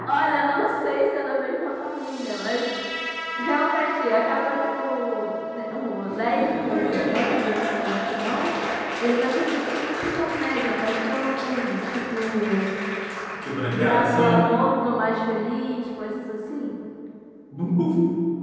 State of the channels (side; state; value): both; identical; correlation 1.00